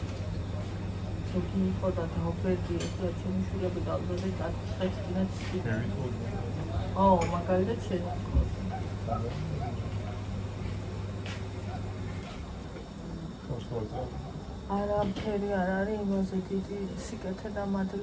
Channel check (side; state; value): both; identical; correlation 1.00